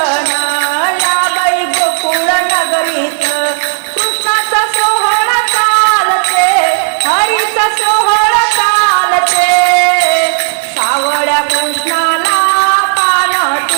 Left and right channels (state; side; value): silent; left; 62 dB below the other